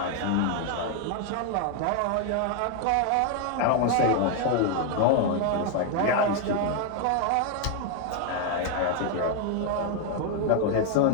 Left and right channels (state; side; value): different; both; correlation 0.01